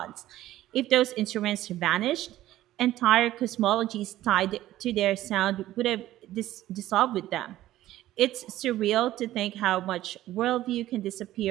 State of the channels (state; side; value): quieter; left; 14.5 dB